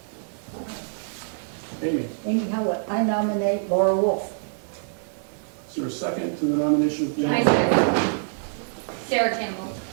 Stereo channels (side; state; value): left; silent; 62 dB below the other